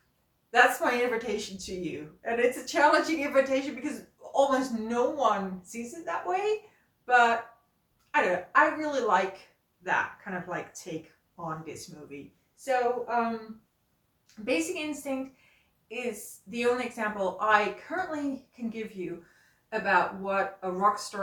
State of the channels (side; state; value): both; identical; correlation 1.00